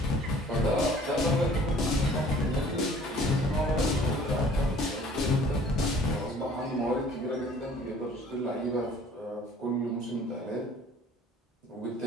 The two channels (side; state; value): both; normal; correlation 0.53